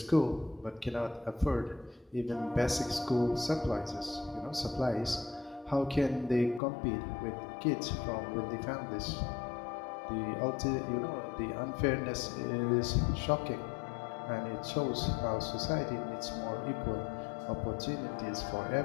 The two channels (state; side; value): drops out; right; at 6.6 s